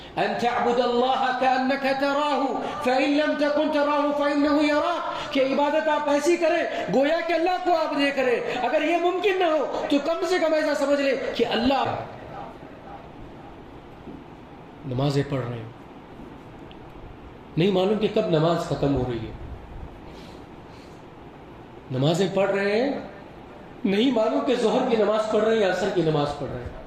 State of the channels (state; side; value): identical; both; correlation 1.00